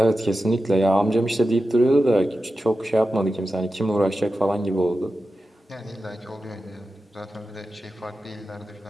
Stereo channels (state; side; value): normal; both; correlation 0.92